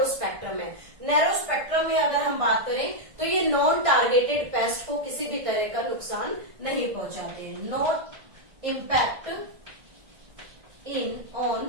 स्पेक्ट्रम है। नैरो स्पेक्ट्रम में अगर हम बात करें तो ये नॉन टारगेटेड पेस्ट को किसी भी तरह का नुकसान नहीं पहुंचाते हैं। Not impact in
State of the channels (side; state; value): left; late; 1.5 ms